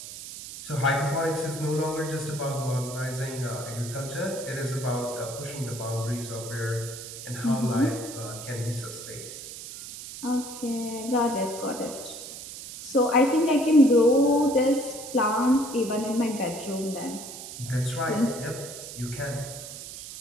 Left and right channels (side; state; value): right; noise; hiss, 11 dB below the sound